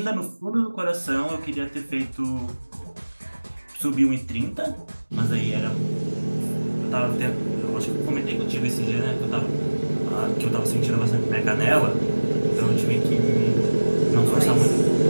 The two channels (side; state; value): both; inverted; correlation -1.00